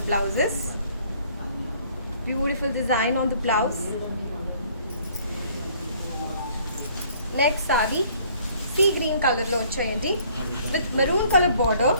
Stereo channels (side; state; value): both; inverted; correlation -0.59